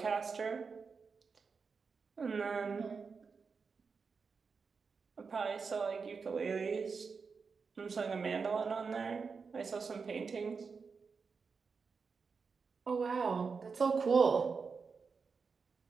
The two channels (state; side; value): quieter; left; 5.2 dB